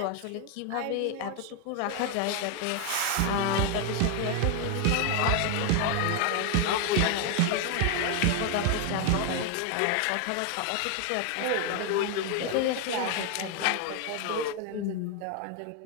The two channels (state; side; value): different; both; correlation 0.01